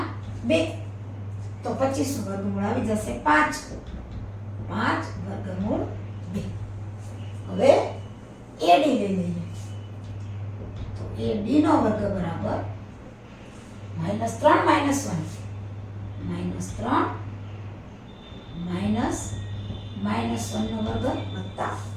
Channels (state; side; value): identical; both; correlation 1.00